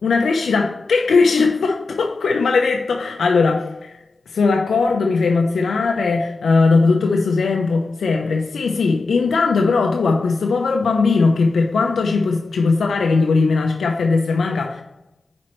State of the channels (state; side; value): quieter; right; 3.8 dB